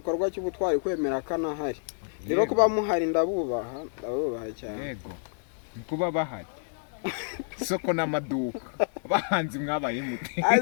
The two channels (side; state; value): right; silent; 59 dB below the other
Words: cy'ubutwari kwemera kana hari rero kuba muhari ndabubaha cyane yego kuba bahari soko n'amaduka bahanzi mwabaye mute